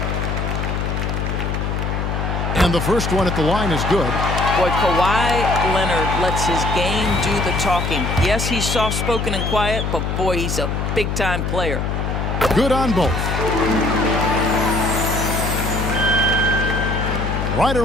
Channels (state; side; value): noise; left; hum, 1 dB below the sound